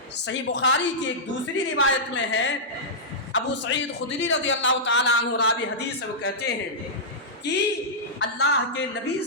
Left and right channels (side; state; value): both; normal; correlation -0.12